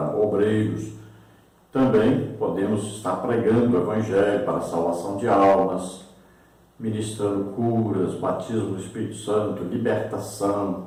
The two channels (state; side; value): identical; both; correlation 1.00